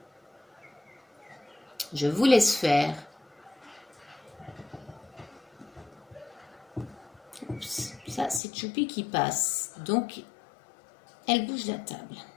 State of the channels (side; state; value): right; drops out; at 8.4 s